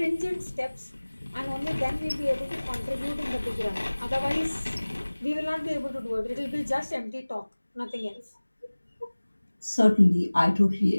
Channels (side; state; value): both; inverted; correlation -1.00